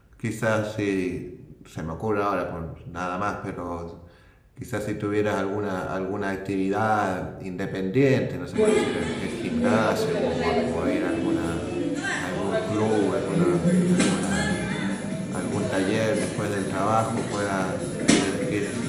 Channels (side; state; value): both; identical; correlation 1.00